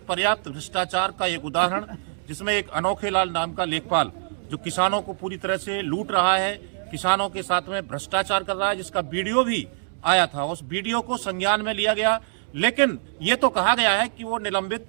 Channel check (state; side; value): silent; left; digital silence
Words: पर्याप्त भ्रष्टाचार का एक उदाहरण, जिसमें एक अनोखे लाल नाम का लेखपाल जो किसानों को पूरी तरह से लूट रहा है, किसानों के साथ में भ्रष्टाचार कर रहा है, जिसका वीडियो भी आया था। उस वीडियो को संज्ञान में लिया गया, लेकिन ये तो कहा गया है कि वो निलंबित